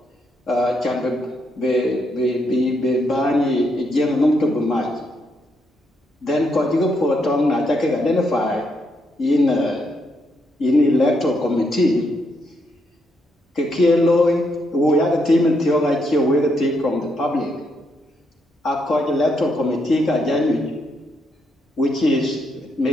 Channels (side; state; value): both; normal; correlation 0.78